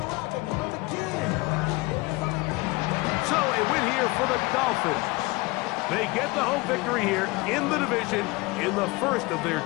So a win here for the Dolphins. They get the home victory here in the division in the first of their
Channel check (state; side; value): quieter; right; 23.5 dB